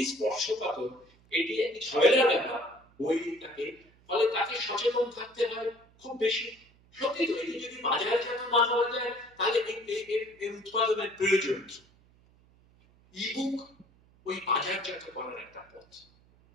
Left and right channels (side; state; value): right; noise; hum, 30 dB below the sound